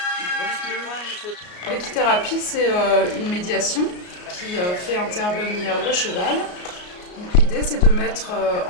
de... L'équithérapie, c'est une médiation qui fait intervenir le cheval. Donc l'idée, c'est de mettre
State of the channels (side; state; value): right; late; 33 ms